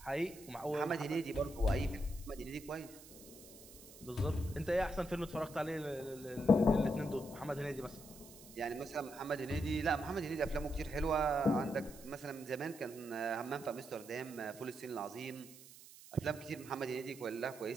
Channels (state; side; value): noise; right; hiss, 18 dB below the sound